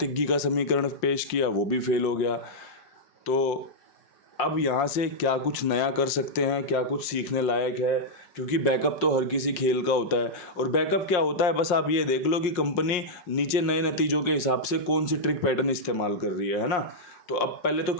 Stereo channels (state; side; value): late; right; 5.6 ms